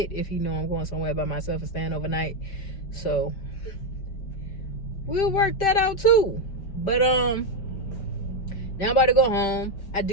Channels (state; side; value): late; right; 5.1 ms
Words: if he know I'm going somewhere by myself and staying overnight. So we'll work that out too. But now I'm about to go home. I